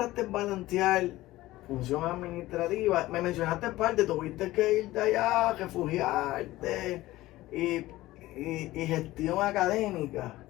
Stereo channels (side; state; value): right; quieter; 17.2 dB